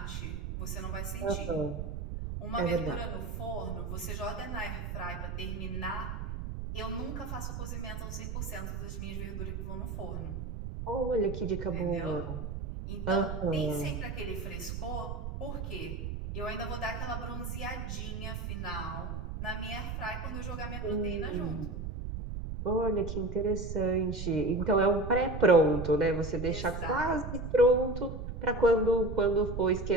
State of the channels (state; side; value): noise; right; rumble, 5 dB below the sound